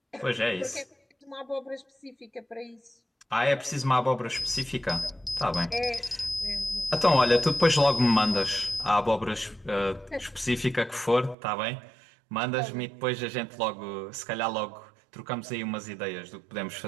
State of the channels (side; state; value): left; drops out; at 11.4 s